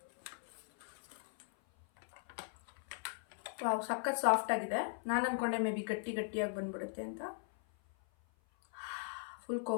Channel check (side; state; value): right; silent; 52 dB below the other